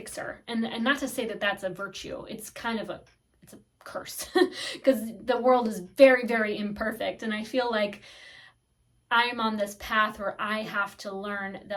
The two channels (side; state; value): both; identical; correlation 1.00